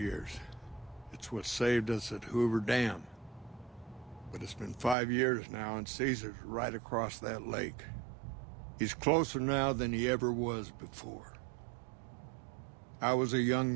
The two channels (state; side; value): drops out; left; at 5.0 s